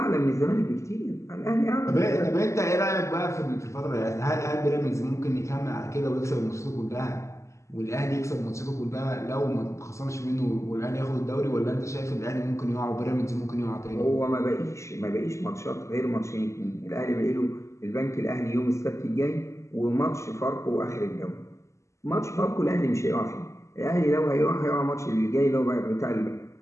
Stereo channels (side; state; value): right; late; 0.14 ms